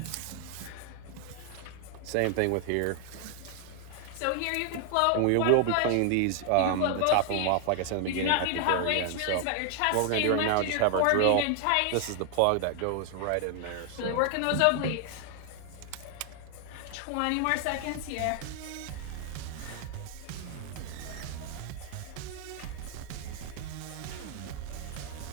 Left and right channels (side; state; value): both; different; correlation 0.00